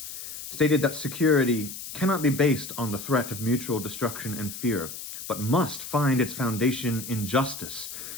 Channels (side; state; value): left; noise; hiss, 10 dB below the sound